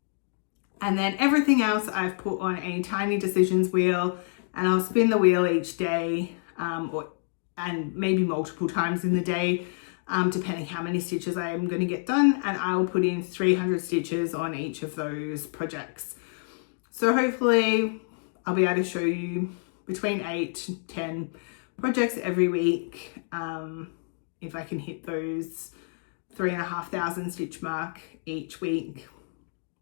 And then everything else I've put on a tiny decisions wheel, and I'll spin the wheel each day, and maybe multiple times in the day, depending how many stitches I am going to get done, and I will put in 300 stitches on each of those projects. So hopefully I'll be able to show you between 8 to 10 projects every week, if I can hit those 3,500 stitch mark each week.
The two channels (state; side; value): silent; right; digital silence